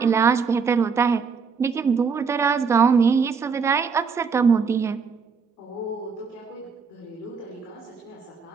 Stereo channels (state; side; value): quieter; left; 5.6 dB